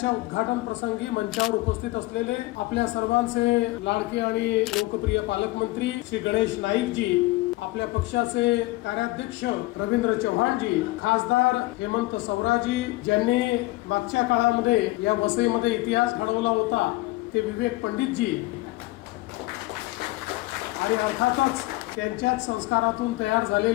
उद्घाटन प्रसंगी मंचावर उपस्थित असलेले आपल्या सर्वांचे लाडके आणि लोकप्रिय पालकमंत्री श्री गणेश नाईक जी, आपल्या पक्षाचे कार्याध्यक्ष रवींद्र चव्हाणजी, खासदार हेमंत सवराजी, ज्यांनी मागच्या काळामध्ये या वसईमध्ये इतिहास घडवला होता ते विवेक पंडितजी, आणि अर्थातच त्यांच्याच संस्कारातून तयार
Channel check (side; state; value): right; quieter; 20.1 dB